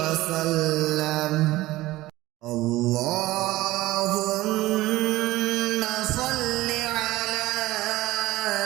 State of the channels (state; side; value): quieter; left; 17.8 dB